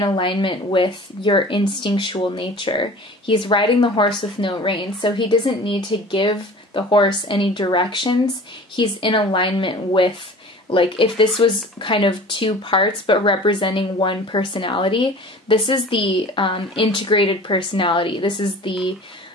alignment with your instinctual nature. He's riding the horse with no reins, so he doesn't need to give the horse any directions. He's in alignment with like if this was kind of two parts but representing one personality, this is the integrated personality. This is the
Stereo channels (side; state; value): both; normal; correlation 0.42